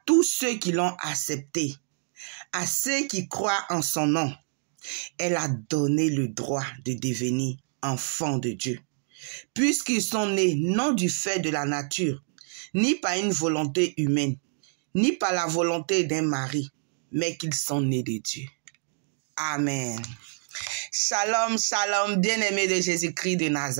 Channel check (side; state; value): left; silent; digital silence